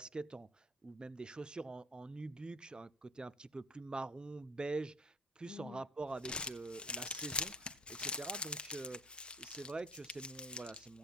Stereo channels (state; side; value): normal; both; correlation 0.46